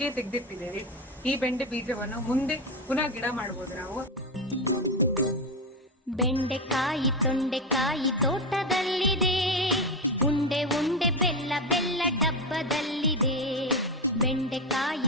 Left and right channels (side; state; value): both; normal; correlation 0.14